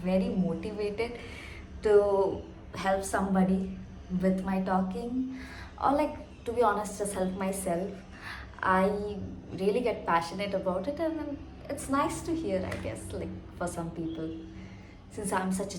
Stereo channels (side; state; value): both; identical; correlation 1.00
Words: motivated to help somebody with my talking, or to be honest, just help myself, I really get passionate about it, and then it's nice to hear, I guess, for some people, since I'm such